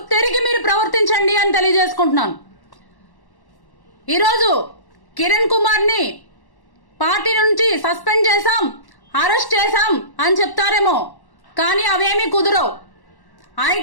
మీరు ప్రవర్తించండి అని తెలియజేసుకుంటున్నాను. ఈరోజు కిరణ్ కుమార్ని పార్టీ నుంచి సస్పెండ్ చేశాం, అరెస్ట్ చేశాం అని చెప్తారేమో, కానీ అవేమీ కుదరవు.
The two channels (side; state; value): right; late; 1.1 ms